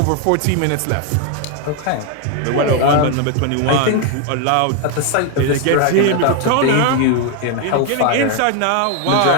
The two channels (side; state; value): both; different; correlation 0.01